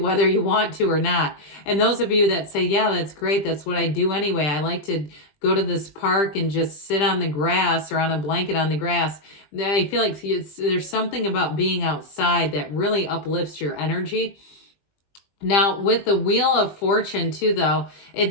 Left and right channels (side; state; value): right; late; 20 ms